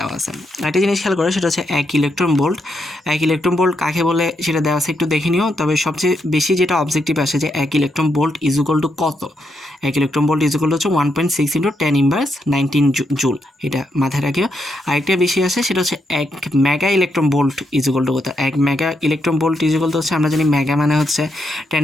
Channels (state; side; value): normal; both; correlation 0.80